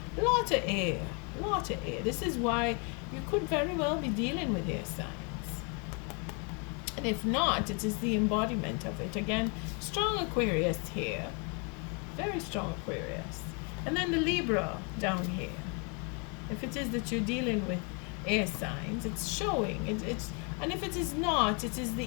Lot of air. Lot of air. This is why you could very well be dealing with air signs. And if not, it is the embodiment of it. Again, strong Aquarius here. Very strong Aquarius. And then the Libra down here. If it is that you're dealing with air signs, it's showing. It's and if it is not, it is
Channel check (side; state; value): right; quieter; 35.3 dB